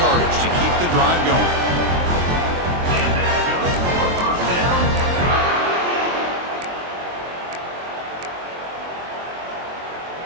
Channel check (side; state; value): left; late; 23 ms